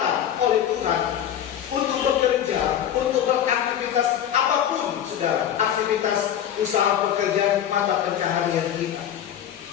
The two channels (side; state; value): right; quieter; 10.2 dB